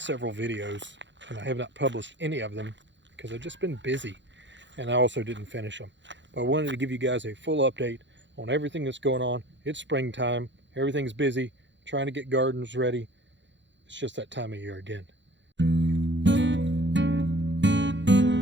videos and I have not published any of them because I've just been busy and I also didn't finish them. But I wanted to give you guys a full update on everything that's going on. It's springtime, everything's busy, trying to get gardens ready. It's just that time of year again.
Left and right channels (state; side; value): late; left; 0.53 ms